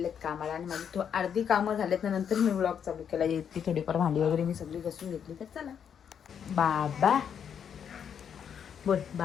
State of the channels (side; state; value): right; quieter; 8.0 dB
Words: कामाला आणि माझी अर्धी कामं झालेत ना, नंतर मी व्लॉग चालू केला. ती थोडीफार भांडी वगैरे मी सगळी घासून घेतली. तर चला बाबा बोल,